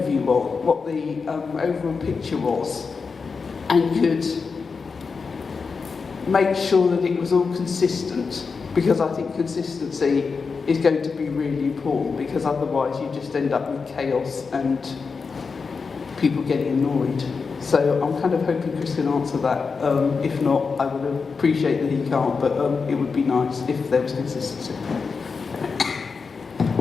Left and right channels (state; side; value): quieter; right; 5.0 dB